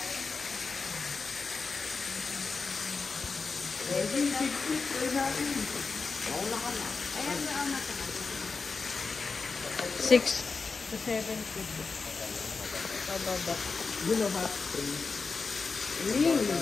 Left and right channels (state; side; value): quieter; right; 4.5 dB